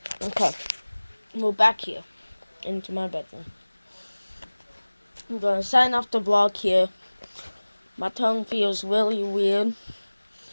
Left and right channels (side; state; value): both; inverted; correlation -1.00